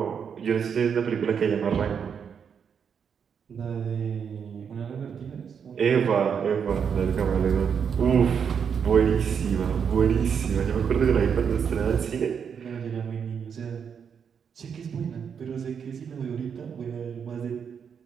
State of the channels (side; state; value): left; quieter; 7.1 dB